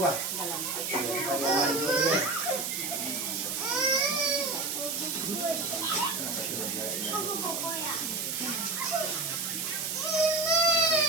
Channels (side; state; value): right; noise; hiss, 2 dB below the sound